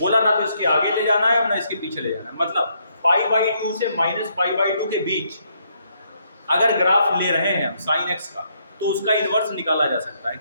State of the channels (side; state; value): both; inverted; correlation -0.73